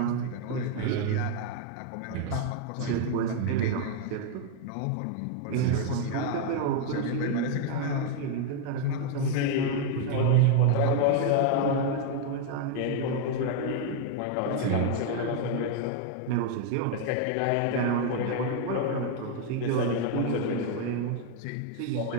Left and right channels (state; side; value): different; both; correlation 0.00